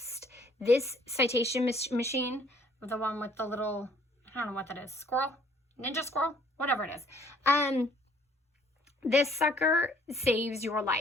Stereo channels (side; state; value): both; normal; correlation 0.60